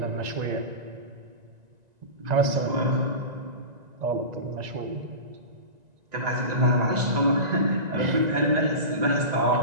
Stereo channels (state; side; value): late; left; 1.9 ms